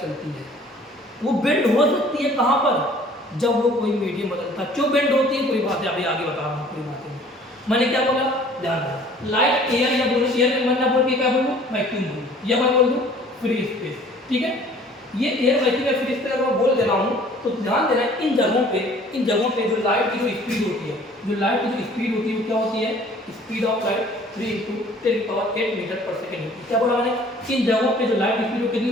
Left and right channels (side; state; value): both; normal; correlation 0.52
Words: चलती है। वो बेंड हो सकती है कहाँ पर, जब वो कोई मीडियम बदलता है। क्यों बेंड होती है, पूरी बातें अभी आगे बता रहा हूँ, पूरी बातें मैंने क्या बोला, ध्यान रखना। लाइट एयर या बोलो, एयर में मैंने बोल के क्या बोलूँ, वैक्यूम बोलूँ, या मैं बोल दूँ फ्री स्पेस, ठीक है। ये एयर वैक्यूम या फ्री स्पेस अगर मैं बोल दे रहा हूँ तो ध्यान देना, इन जगहों पे जो लाइट की जो स्पीड होती है, जो लाइट की जो स्पीड होती है वो क्या होती है, स्पीड ऑफ लाइट 3 × 10⁸ मीटर पर सेकेंड होती है। क्या बोला मैंने, इन जगहों पे जो लाइट की स्पीड कितनी